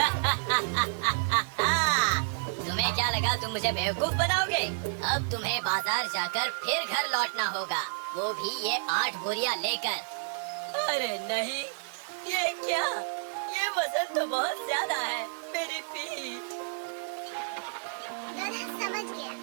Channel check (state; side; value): silent; left; 58 dB below the other